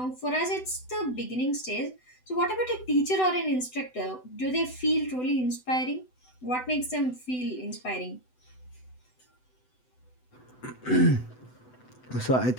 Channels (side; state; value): right; late; 7.9 ms